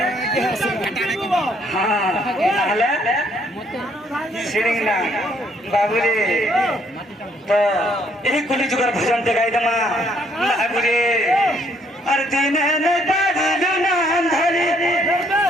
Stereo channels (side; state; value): both; normal; correlation 0.67